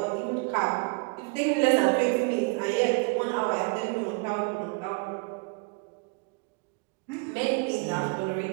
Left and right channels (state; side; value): quieter; left; 31.6 dB